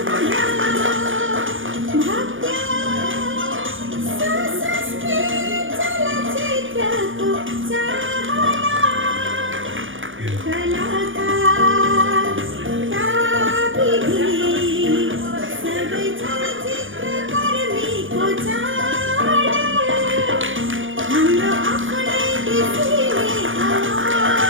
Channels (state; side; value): late; left; 0.57 ms